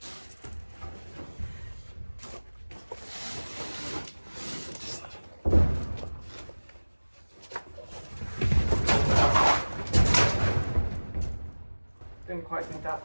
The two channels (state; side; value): inverted; both; correlation -1.00